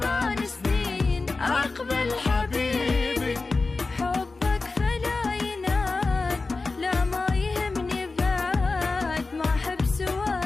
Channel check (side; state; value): right; quieter; 3.7 dB